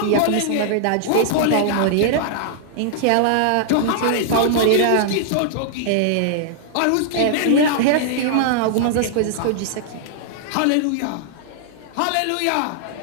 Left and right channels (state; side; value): different; both; correlation -0.01